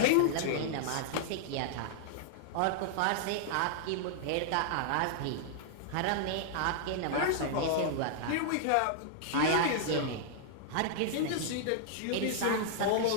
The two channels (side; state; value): both; different; correlation -0.01